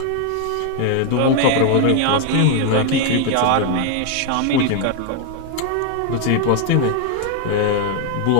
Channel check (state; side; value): different; both; correlation 0.00